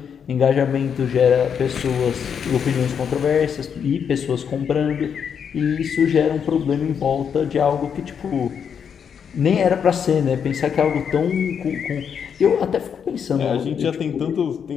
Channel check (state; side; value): quieter; right; 7.4 dB